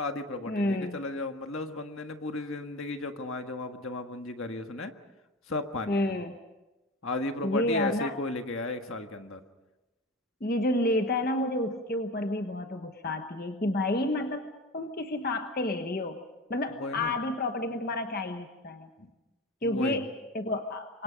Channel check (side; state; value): both; normal; correlation 0.31